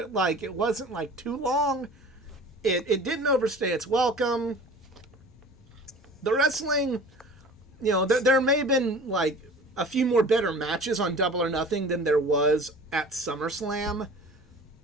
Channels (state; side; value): normal; both; correlation 0.42